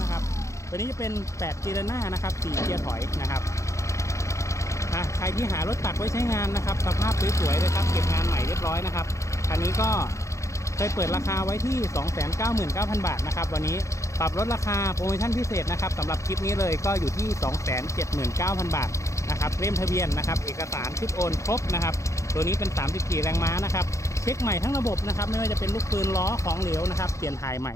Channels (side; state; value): right; late; 0.15 ms